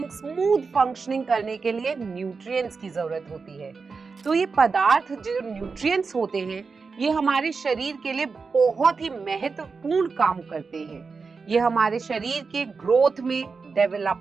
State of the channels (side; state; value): left; quieter; 4.8 dB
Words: स्मूथ फंक्शनिंग करने के लिए न्यूट्रिएंट्स की जरूरत होती है। तो ये पदार्थ जो न्यूट्रिएंट्स होते हैं, ये हमारे शरीर के लिए बहुत ही महत्वपूर्ण काम करते हैं। ये हमारे शरीर के ग्रोथ में,